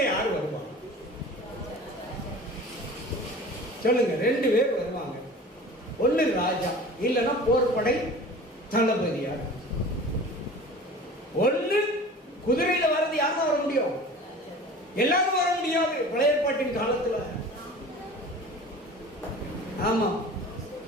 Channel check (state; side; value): normal; both; correlation 0.40